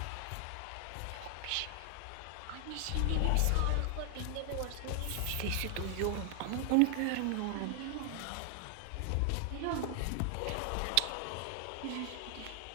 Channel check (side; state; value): both; different; correlation 0.00